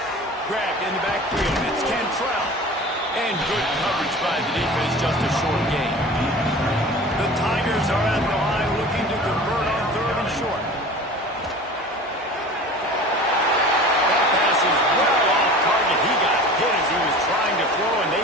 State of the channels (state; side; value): normal; both; correlation 0.39